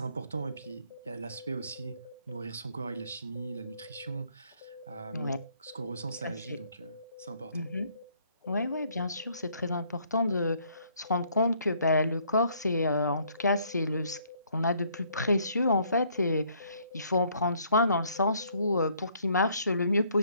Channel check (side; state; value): both; inverted; correlation -0.65